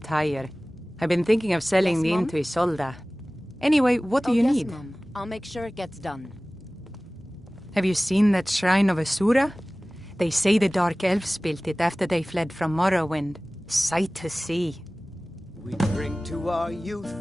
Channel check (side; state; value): both; normal; correlation 0.98